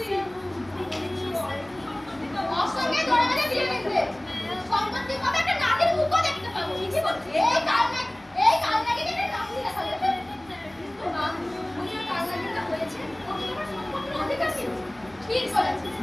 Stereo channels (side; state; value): left; noise; hum, 30 dB below the sound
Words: ওর সঙ্গে ধরে বেঁধে বিয়ে দিতে। সম্পত্তি কবে একটা নাতির মুখও দেখতে পাবো। কি বলছিস? এই কাল নাকি একটা নাতি দেখা যাবে। মা, উনি ওই কাল নাকিটা হয়েছে। ওকে তোমার সম্পত্তির অধিকার কি? ঠিক বলেছিস।